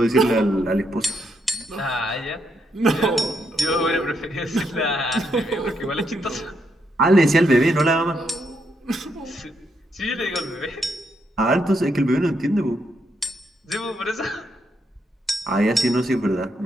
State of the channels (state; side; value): normal; both; correlation 0.78